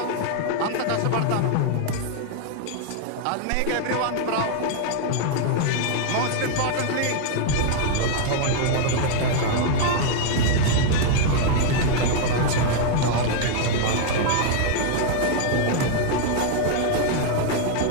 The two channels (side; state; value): both; different; correlation 0.00